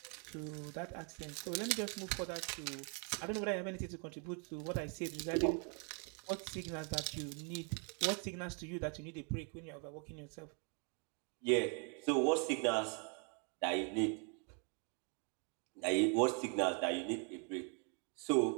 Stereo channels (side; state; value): left; quieter; 39.1 dB